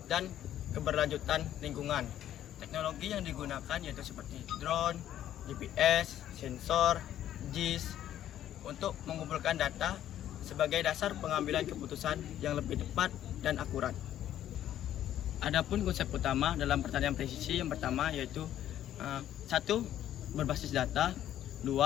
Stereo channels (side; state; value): right; quieter; 11.7 dB